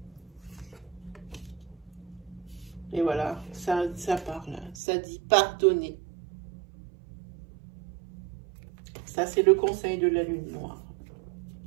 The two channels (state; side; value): drops out; left; at 4.8 s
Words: Et voilà, ça parle, ça dit pardonner. Ça, c'est le conseil de la lune noire.